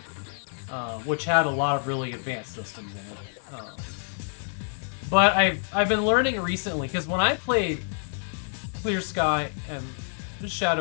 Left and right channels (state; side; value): silent; right; 60 dB below the other